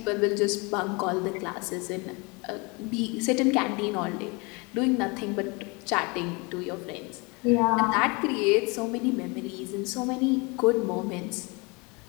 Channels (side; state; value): right; quieter; 28.5 dB